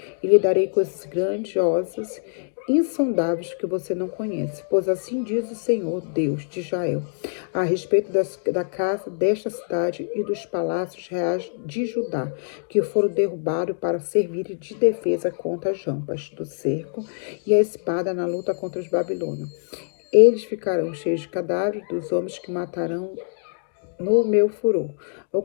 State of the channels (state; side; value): silent; right; digital silence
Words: E lhe darei coisas grandiosas, insondáveis que você não conhece, pois assim diz o Senhor, Deus de Israel, a respeito da casa desta cidade e dos palácios reais de Judá, que foram derrubados para servir de defesa contra as rampas do cerco e a espada na luta contra os babilônios. Eles ficarão cheios de cadáveres dos homens que matarão no meu furor.